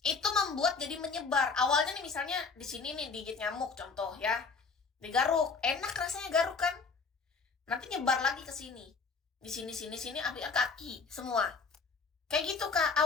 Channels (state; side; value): quieter; right; 4.8 dB